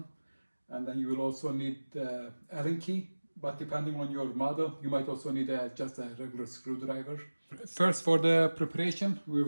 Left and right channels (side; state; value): both; inverted; correlation -1.00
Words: and then you will also need the Allen key, but depending on your model you might also need just a regular screwdriver. First, for the preparation we